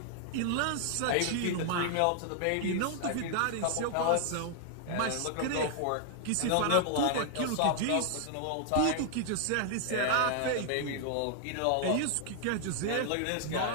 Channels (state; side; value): different; both; correlation 0.00